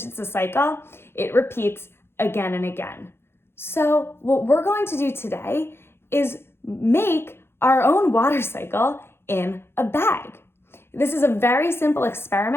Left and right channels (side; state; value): right; late; 0.11 ms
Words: it's a cycle, it repeats again and again. So what we're going to do today is make our own water cycle in a bag. This is a very simple